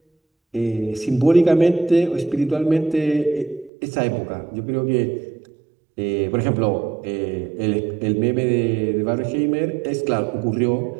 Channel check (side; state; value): left; drops out; at 3.7 s